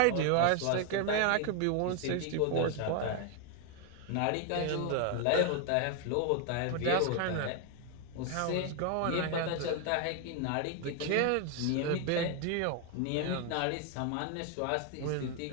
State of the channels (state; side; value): different; both; correlation 0.01